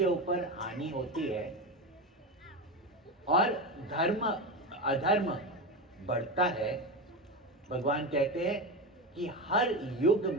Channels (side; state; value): both; normal; correlation 0.19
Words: ऊपर हानि होती है और धर्म अधर्म बढ़ता है, भगवान कहते हैं कि हर युग